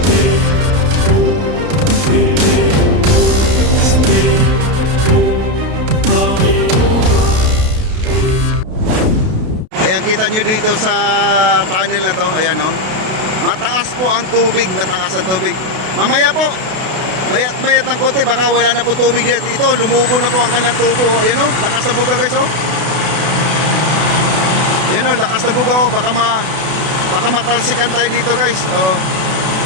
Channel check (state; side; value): late; left; 32 ms